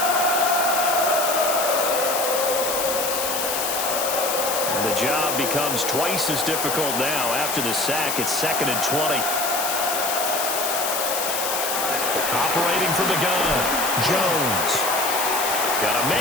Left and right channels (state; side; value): noise; left; hiss, 2 dB below the sound